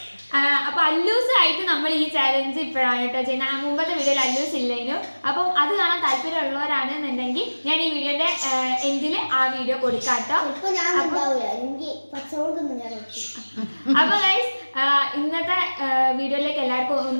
അപ്പോൾ അല്ലൂസായിട്ട് നമ്മൾ ഈ ചാലഞ്ച് ഇപ്പോഴാണ് കേട്ടോ ചെയ്യുന്നത്. മുമ്പത്തെ വീഡിയോയിൽ അല്ലൂസ് ഇല്ലേനു. അപ്പം അത് കാണാൻ താല്പര്യമുള്ളവരാണെന്നുണ്ടെങ്കിൽ ഞാൻ ഈ വീഡിയോന്റെ എൻഡിൽ ആ വീഡിയോ കൊടുക്കാം കേട്ടോ. അപ്പൊ ഗൈസ് ഇന്നത്തെ വീഡിയോയിലേക്ക് എല്ലാവർക്കും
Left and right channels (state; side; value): inverted; both; correlation -1.00